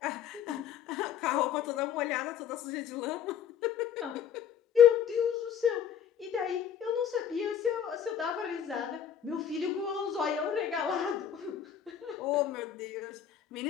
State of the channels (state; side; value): quieter; right; 8.7 dB